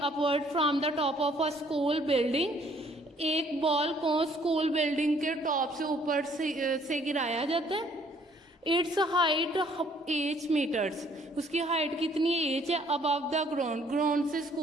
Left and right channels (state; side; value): normal; both; correlation 0.62